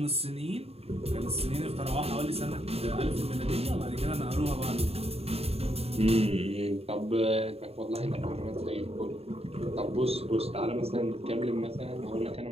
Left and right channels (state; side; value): late; left; 0.29 ms